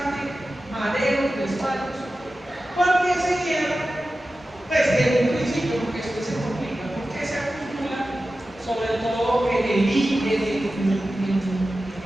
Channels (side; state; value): both; normal; correlation 0.94